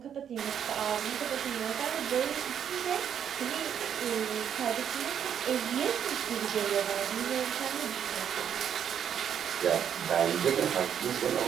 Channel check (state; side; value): quieter; left; 8.7 dB